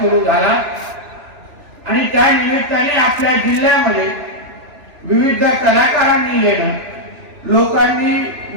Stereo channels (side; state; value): left; late; 3.0 ms